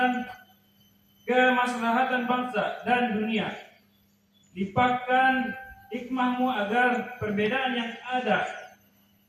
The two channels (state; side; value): identical; both; correlation 1.00